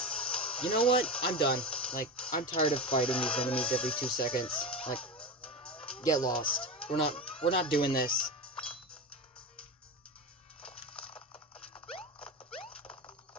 You know what? I'm done. Like, I'm tired of fighting these enemies every 2 seconds. Like, get lost. We're not doing this.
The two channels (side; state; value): both; normal; correlation 0.21